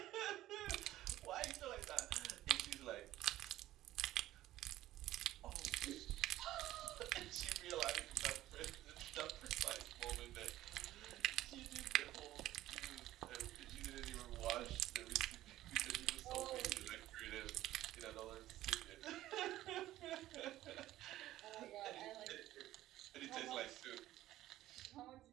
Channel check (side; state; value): left; quieter; 14.8 dB